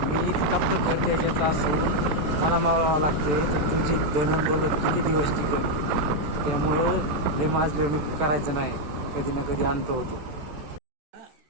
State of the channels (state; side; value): late; left; 14 ms